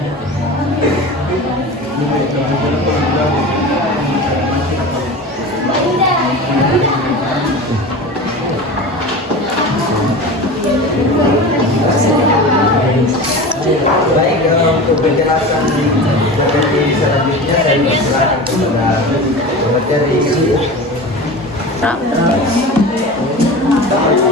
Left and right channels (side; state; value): both; normal; correlation 0.31